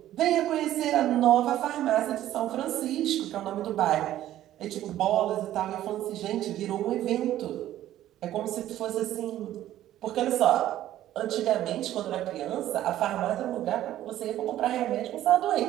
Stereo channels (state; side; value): quieter; left; 13.1 dB